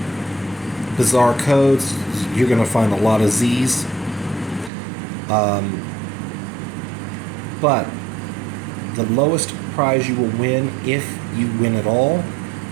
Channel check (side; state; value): left; drops out; at 4.7 s